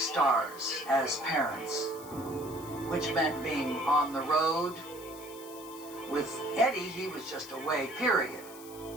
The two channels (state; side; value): noise; left; hiss, 17 dB below the sound